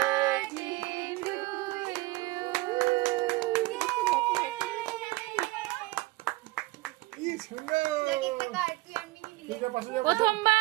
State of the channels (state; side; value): quieter; left; 21.3 dB